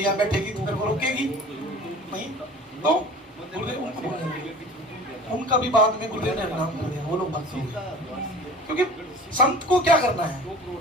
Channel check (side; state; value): both; normal; correlation 0.42